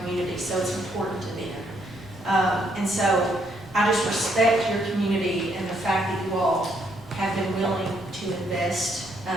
so it's important to them. And so I just respect your community and the fact that you all have been willing to invest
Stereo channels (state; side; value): normal; both; correlation 0.72